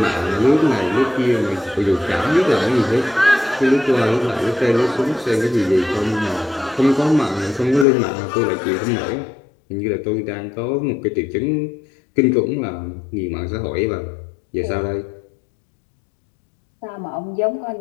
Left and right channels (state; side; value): drops out; right; at 7.9 s